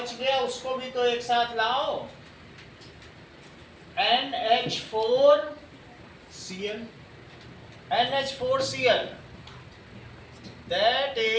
गया उसको भी तो एक साथ लाओ, NH4Cl, NH4Cl, that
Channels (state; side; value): identical; both; correlation 1.00